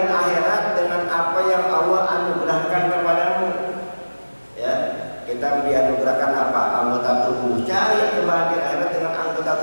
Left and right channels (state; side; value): inverted; both; correlation -1.00